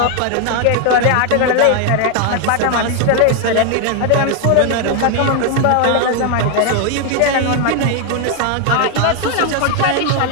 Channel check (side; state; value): both; different; correlation 0.00